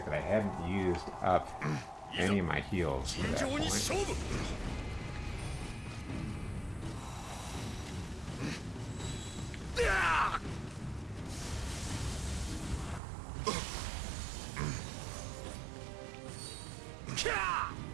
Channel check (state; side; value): drops out; left; at 13.0 s